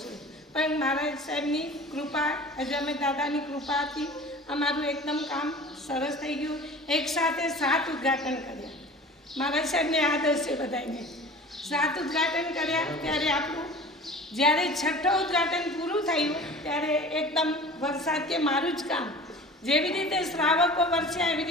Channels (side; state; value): both; normal; correlation 0.41